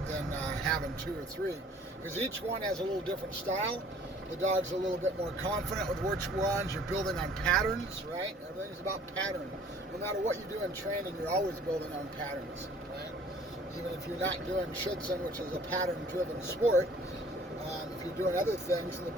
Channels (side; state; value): both; normal; correlation 0.53